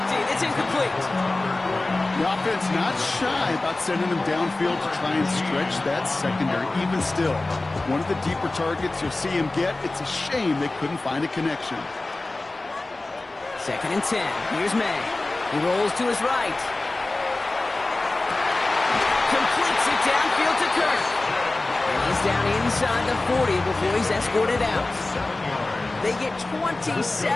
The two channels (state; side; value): quieter; right; 3.0 dB